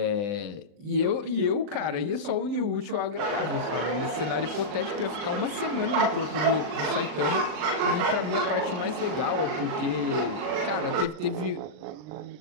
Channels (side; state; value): left; late; 39 ms